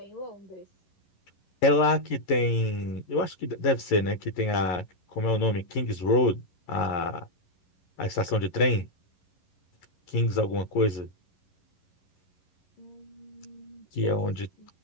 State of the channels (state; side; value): late; right; 11 ms